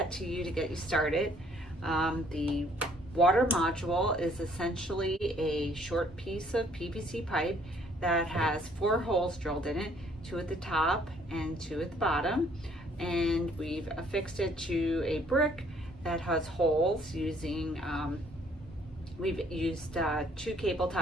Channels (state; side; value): normal; both; correlation 0.62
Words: to you to get you started. The water module is essentially a short piece of PVC pipe that has 4 holes drilled in it, 2 at the top and 2 at the bottom, and we've affixed it to a brick that has holes using, we've used 2 cable